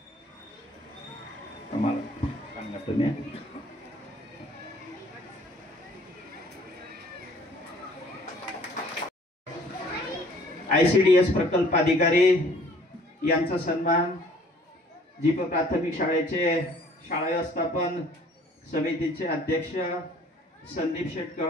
आम्हाला सांगा तुम्ही. ICDS प्रकल्प अधिकारी यांचा सन्मान जीप प्राथमिक शाळेचे शाळा व्यवस्थापन समितीचे अध्यक्ष संदीप शेठ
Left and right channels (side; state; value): both; normal; correlation 0.55